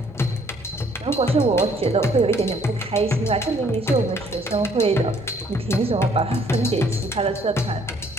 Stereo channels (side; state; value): both; normal; correlation 0.62